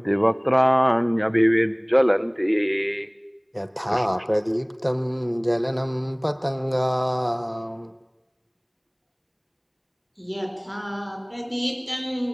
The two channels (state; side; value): identical; both; correlation 1.00